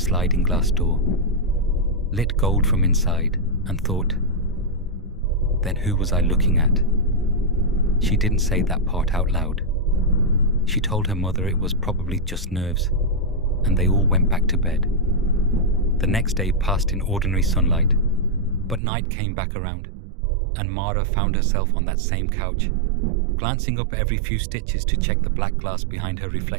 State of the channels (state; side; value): drops out; left; at 18.8 s